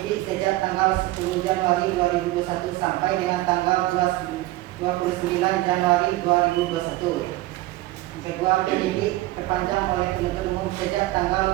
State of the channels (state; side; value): quieter; left; 18.1 dB